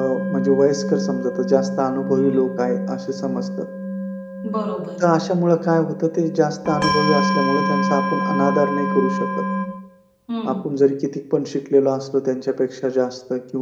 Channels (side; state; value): both; identical; correlation 1.00